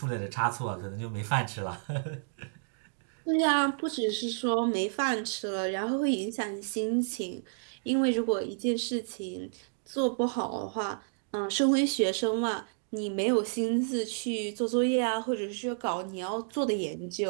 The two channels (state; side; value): silent; left; digital silence